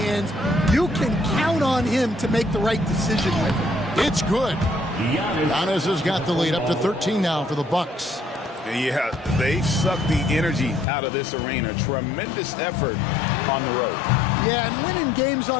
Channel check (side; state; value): right; drops out; at 10.9 s